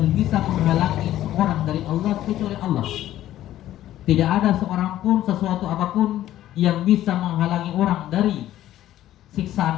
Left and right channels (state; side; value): quieter; right; 13.3 dB